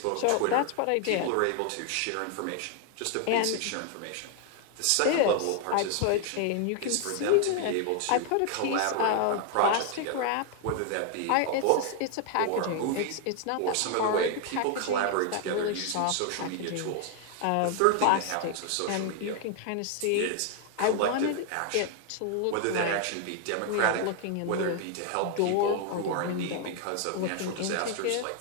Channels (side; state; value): both; different; correlation 0.00